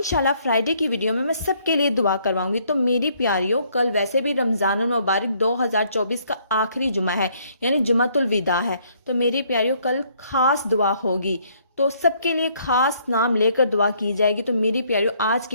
फ्राइडे की वीडियो में मैं सबके लिए दुआ करवाऊंगी। तो मेरी प्यारियों, कल वैसे भी रमज़ानुल मुबारक 2024 का आखिरी जुमा है, यानी जुमातुल विदा है। तो मेरी प्यारियों, कल ख़ास दुआ होगी, तो सबके लिए ख़ास नाम लेकर दुआ की जाएगी। तो मेरी प्यारियों, आज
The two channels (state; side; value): inverted; both; correlation -0.66